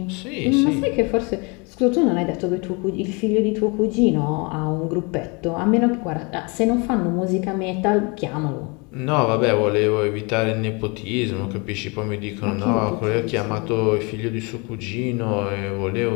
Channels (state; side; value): quieter; right; 30.0 dB